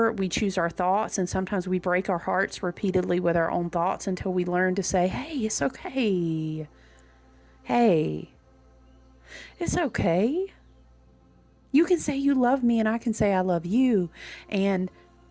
we choose our thoughts, and sometimes we break our hearts repeatedly with our own thoughts until we learn to say, hey, it's okay. Hey. It's okay. You can say you love me and I can say I love you. And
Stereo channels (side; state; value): both; identical; correlation 1.00